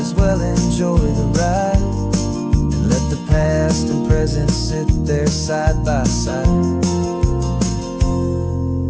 well enjoy the ride and let the past and present sit there side by side.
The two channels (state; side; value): identical; both; correlation 1.00